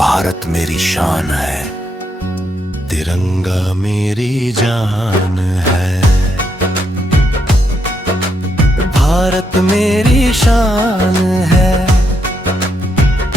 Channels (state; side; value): normal; both; correlation 0.79